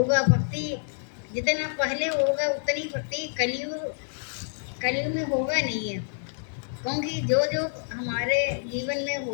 भक्ति जितना पहले होगा उतनी भक्ति कलयुग में होगा नहीं है। क्योंकि जो जो हमारे जीवन में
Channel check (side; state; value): right; silent; digital silence